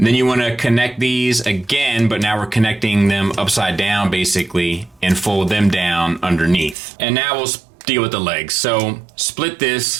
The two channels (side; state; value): left; drops out; at 6.8 s